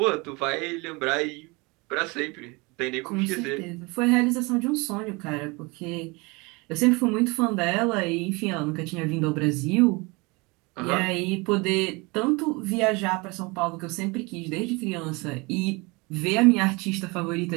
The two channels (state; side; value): quieter; left; 26.4 dB